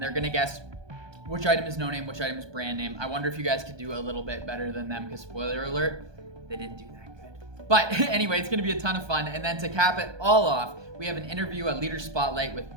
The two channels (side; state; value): left; late; 1.2 ms